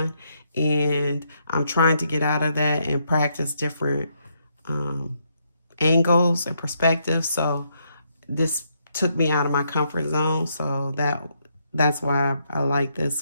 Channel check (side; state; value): both; inverted; correlation -0.77